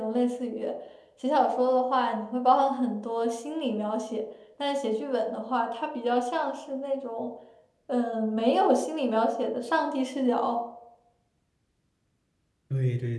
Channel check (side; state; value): both; identical; correlation 1.00